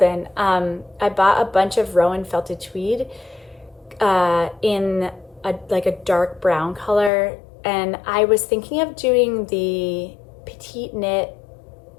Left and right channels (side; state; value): right; drops out; at 7.1 s